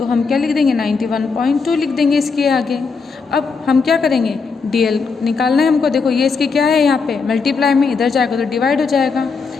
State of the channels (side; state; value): right; quieter; 4.9 dB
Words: हम क्या लिख देंगे, 91.2 लिख देंगे इसके आगे। अब हम क्या करेंगे, DL निकालना है हमको। देखो ये इसके क्या है, यहाँ पे मल्टीप्लाई में इधर जाएगा तो डिवाइड हो जाएगा,